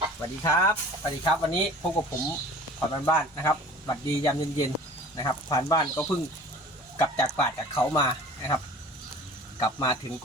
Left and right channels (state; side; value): normal; both; correlation 0.44